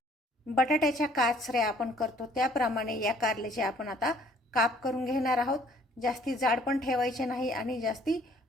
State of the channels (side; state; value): both; normal; correlation 0.59